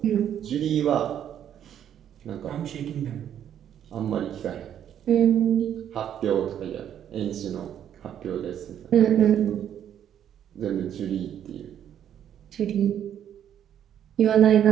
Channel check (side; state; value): left; quieter; 9.9 dB